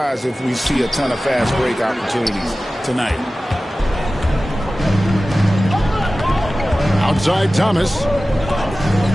if we see a ton of fast break opportunities tonight. Outside Thomas.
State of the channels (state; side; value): normal; both; correlation 0.96